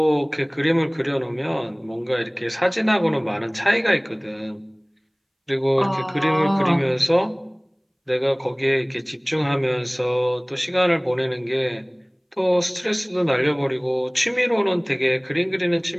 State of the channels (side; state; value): both; identical; correlation 1.00